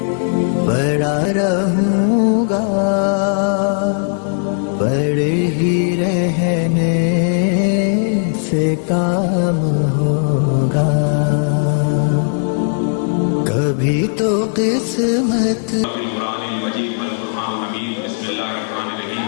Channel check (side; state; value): right; silent; digital silence